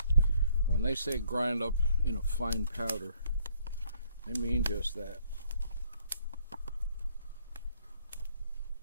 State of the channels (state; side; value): inverted; both; correlation -0.66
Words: when they say grind up in a fine powder, they mean just that.